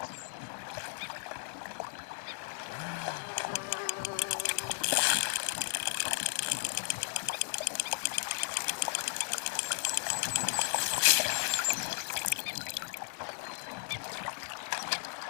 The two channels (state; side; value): silent; right; 55 dB below the other